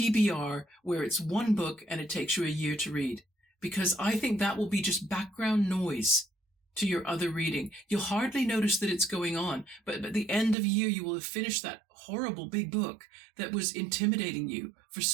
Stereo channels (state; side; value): drops out; left; at 10.6 s